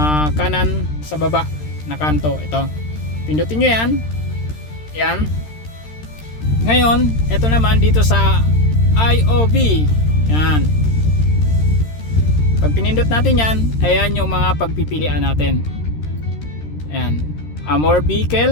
kanan sa baba na kanto. Ito. Pindutin nyo yan. Yan. Ngayon, ito naman dito sa IOV. Yan. Pag pinindot natin yan, ayan yung mga pagpipilian natin. Ayan. More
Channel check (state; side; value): late; right; 13 ms